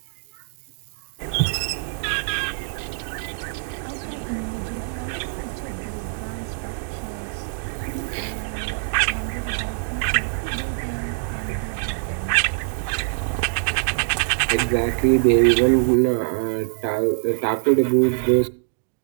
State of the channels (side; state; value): left; silent; digital silence